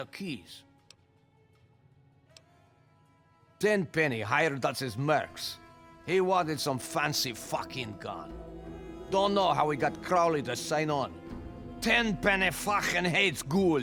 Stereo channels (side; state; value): both; identical; correlation 1.00